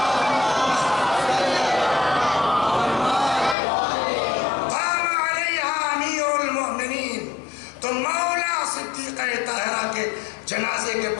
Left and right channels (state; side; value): drops out; right; at 3.6 s